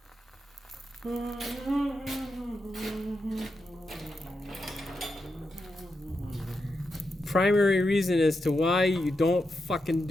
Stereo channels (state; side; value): normal; both; correlation 0.86